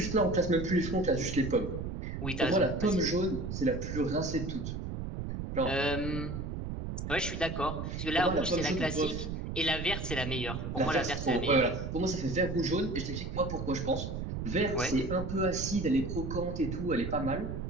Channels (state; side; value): noise; right; rumble, 5 dB below the sound